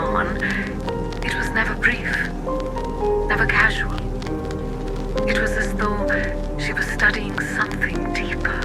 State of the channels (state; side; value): identical; both; correlation 1.00